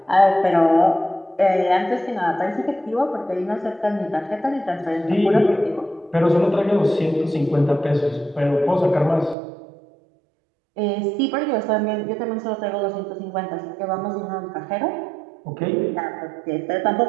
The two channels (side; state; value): left; drops out; at 9.3 s